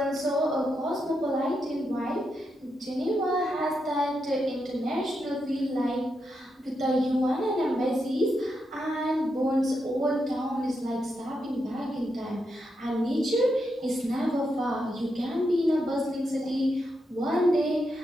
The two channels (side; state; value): both; normal; correlation 0.84